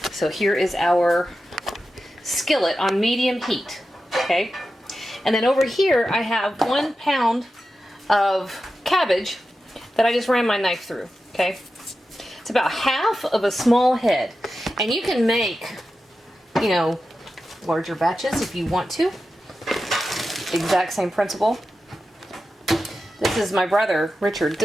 So here is our skillet on medium heat, okay? And then over here, I have 1 pound of cabbage that I just ran my knife through, okay? It's about half of a small head. And you can make, you know, larger batches if you want to. Exact same principle. This is my brother, Richard.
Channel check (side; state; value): both; normal; correlation 0.92